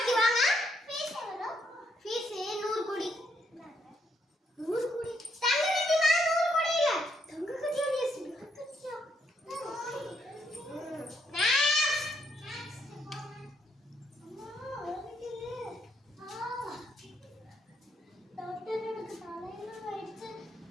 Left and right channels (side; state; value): both; normal; correlation 0.74